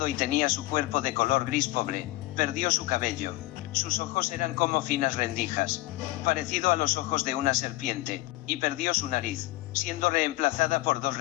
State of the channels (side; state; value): right; quieter; 19.3 dB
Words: y tenía su cuerpo de color gris pobre, perdió su cabello, sus ojos eran como finas rendijas, parecido a los ojos de una serpiente, y perdió su nariz, siendo reemplazada por 2